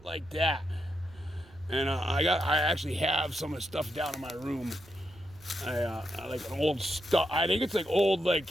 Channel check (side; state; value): right; noise; rumble, 23 dB below the sound